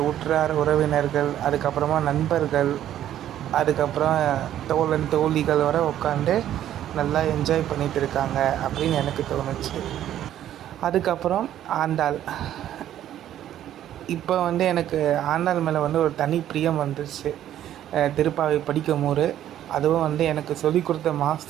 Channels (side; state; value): left; quieter; 11.6 dB